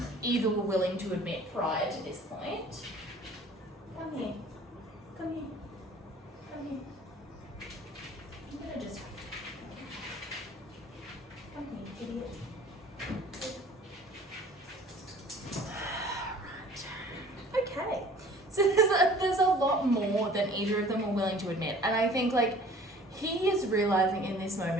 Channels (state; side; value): normal; both; correlation 0.49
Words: either were willing to admit prior to this point. Come here. Come here. Come here. I'm gonna just... Come here, idiot. Right. Okay. So there's a lot more than either of them were willing to admit. And I think, like, he is realising in this